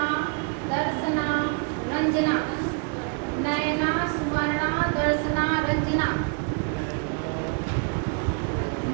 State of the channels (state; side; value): quieter; left; 37.8 dB